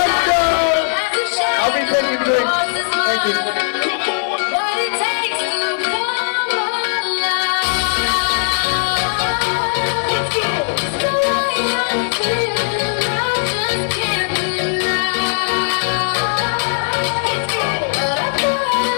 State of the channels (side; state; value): right; silent; digital silence